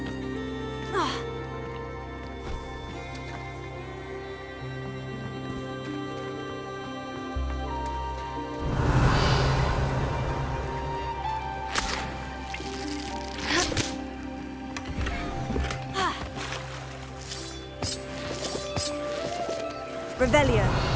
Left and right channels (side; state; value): both; identical; correlation 1.00